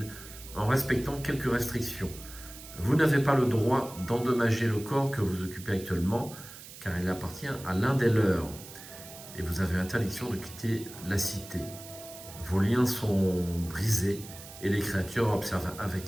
en respectant quelques restrictions. Vous n'avez pas le droit d'endommager le corps que vous occupez actuellement, car il appartient à l'un des leurs, et vous avez interdiction de quitter la cité. Vos liens sont brisés, et les créatures observent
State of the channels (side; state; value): right; noise; hiss, 15 dB below the sound